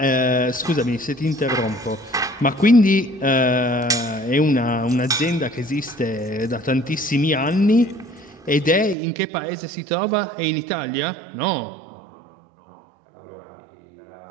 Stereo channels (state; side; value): drops out; left; at 9.0 s